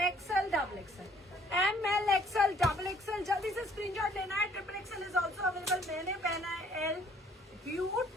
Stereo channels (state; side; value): normal; both; correlation 0.60